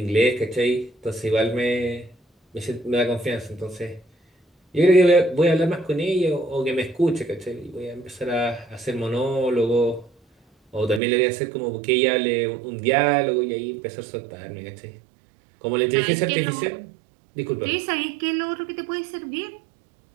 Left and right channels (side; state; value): left; drops out; at 11.0 s